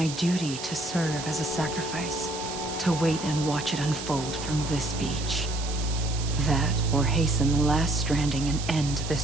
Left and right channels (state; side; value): noise; right; hiss, 9 dB below the sound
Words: duty to serve as a sacrifice, to wait and watch it unfold from this beach. That, or hasten the last stranding and end this